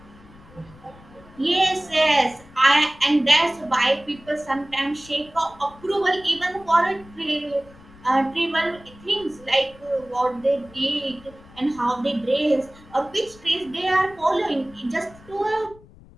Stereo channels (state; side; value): noise; left; rumble, 23 dB below the sound